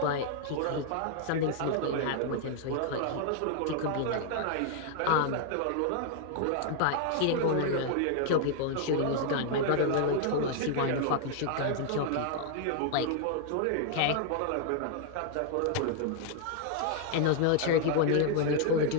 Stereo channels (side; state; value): both; different; correlation 0.00